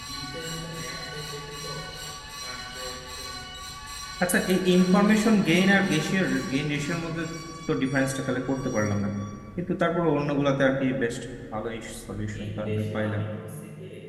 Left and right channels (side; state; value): both; identical; correlation 1.00